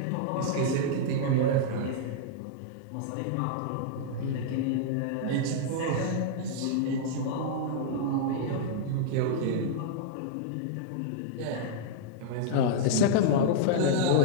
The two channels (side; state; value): both; different; correlation -0.02